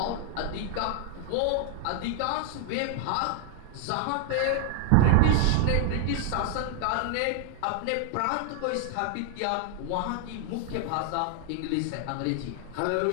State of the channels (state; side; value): different; both; correlation 0.00